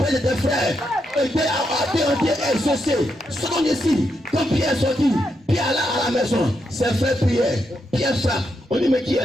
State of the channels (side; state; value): both; normal; correlation 0.82